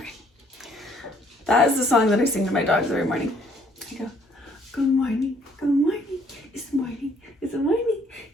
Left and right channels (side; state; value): both; normal; correlation 0.63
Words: That is the song that I sing to my dogs every morning. I go, good morning, it's morning, it's morning, it's morning,